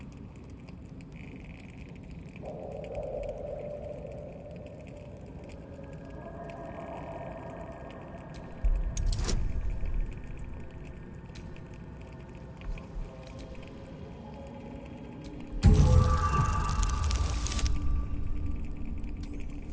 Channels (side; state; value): both; identical; correlation 1.00